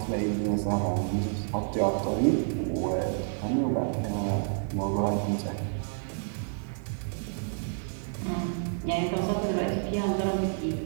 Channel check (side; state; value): left; silent; digital silence